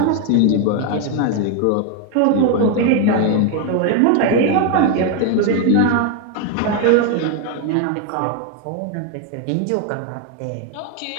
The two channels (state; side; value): different; both; correlation 0.01